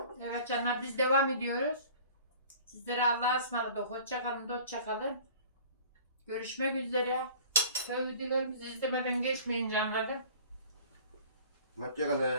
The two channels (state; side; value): inverted; both; correlation -0.46